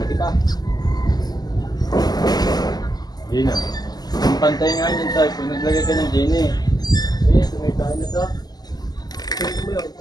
pa. Hindi na. Ang pantay nga yun tayo. Kung naglagay ka ng gin eh. Eh, sumitahin na to. Tingnan mo yun.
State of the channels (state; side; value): late; right; 0.20 ms